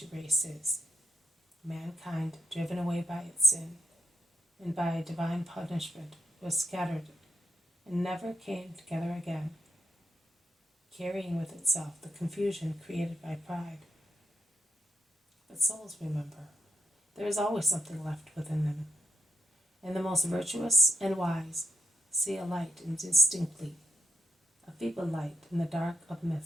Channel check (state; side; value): normal; both; correlation 0.78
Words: races, mankind driven away by its sin, and by divine punishment was scattered, and never came together again, carrying with itself the confusion created by pride. But souls remember, there is always something left within them, and the most virtuous and wise see a light indistinctly, a feeble light in the dark of